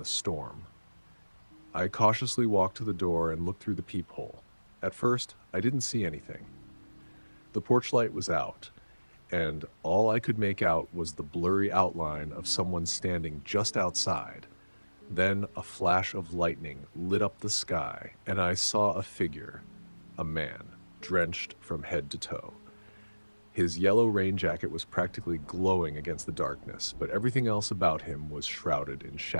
storm. I cautiously walked to the door and looked through the peephole. At first, I didn't see anything. The porch light was out, and all I could make out was the blurry outline of someone standing just outside. Then a flash of lightning lit up the sky, and I saw a figure, a man, drenched from head to toe. His yellow rain jacket was practically glowing against the darkness, but everything else about him was shrouded in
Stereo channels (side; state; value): both; inverted; correlation -1.00